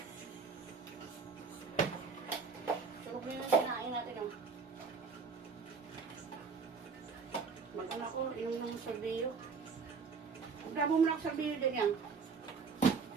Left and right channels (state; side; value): quieter; left; 5.2 dB